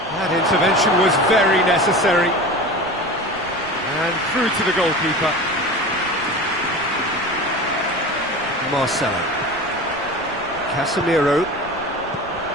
That intervention was very necessary. And through to the goalkeeper. Marcelo. Casemiro.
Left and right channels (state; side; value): noise; right; rumble, 23 dB below the sound